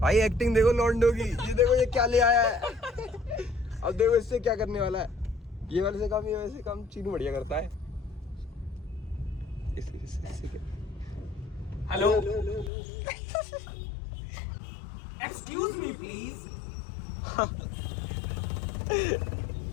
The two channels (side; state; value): right; drops out; at 12.7 s